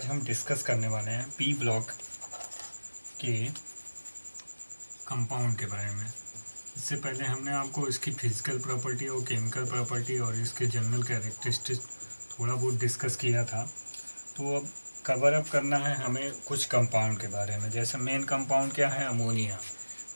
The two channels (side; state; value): both; inverted; correlation -1.00